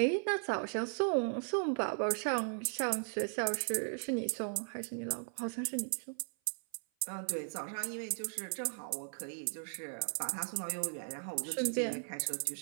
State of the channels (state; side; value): silent; left; 53 dB below the other